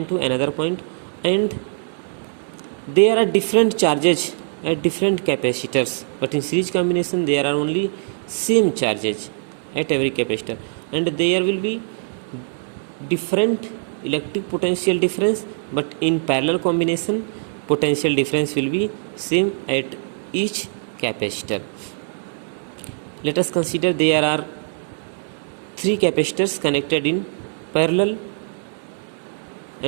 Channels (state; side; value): silent; left; digital silence